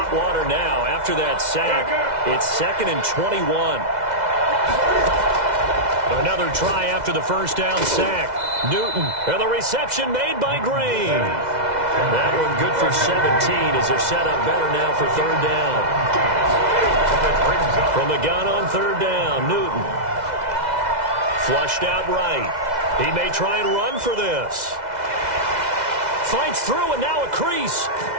water now after that sack. It's 2nd and 21. Another try after the first down sack. Newton, and the reception made by Green. That one good for 17 as they're set up better now for 3rd down. From the gun on 3rd down, Newton. Flushed out right. He may try and run for this. Fights through and now a crease.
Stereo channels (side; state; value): left; late; 2.0 ms